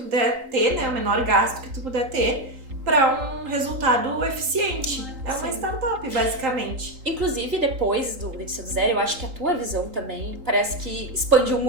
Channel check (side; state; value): left; late; 3.8 ms